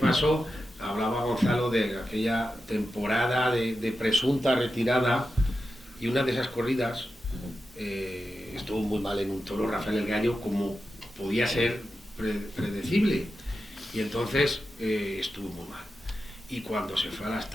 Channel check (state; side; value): normal; both; correlation 0.90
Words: hablaba Gonzalo de aquella temporada de presunta retirada, y una de esas corridas estuvo muy mal en un toro, Rafael el Gallo, como podía ser predecible, y entonces estuvo muy mal. Y cuando se fue a las